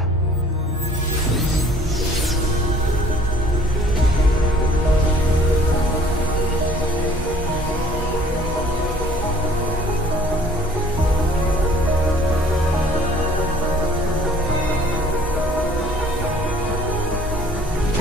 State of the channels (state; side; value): normal; both; correlation 0.56